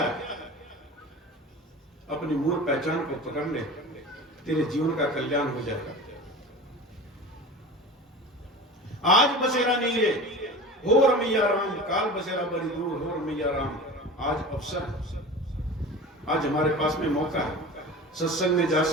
अपनी मूल पहचान को पकड़ ले, तेरे जीवन का कल्याण हो जाएगा। आज बसेरा नहीं है, हो रमैया राम, काल बसेरा बड़ी दूर, हो रमैया राम। आज अवसर है, आज हमारे पास में मौका है। सत्संग में जा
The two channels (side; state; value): both; normal; correlation 0.35